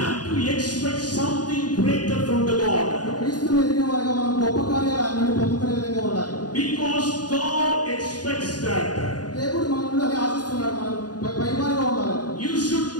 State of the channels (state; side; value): late; right; 0.69 ms